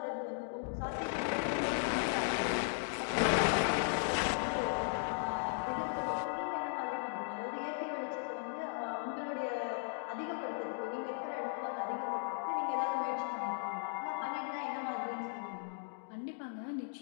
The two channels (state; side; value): silent; right; digital silence